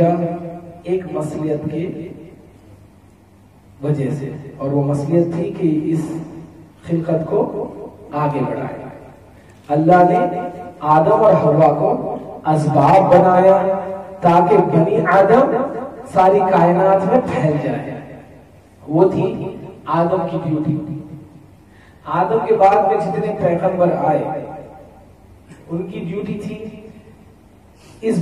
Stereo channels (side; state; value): both; identical; correlation 1.00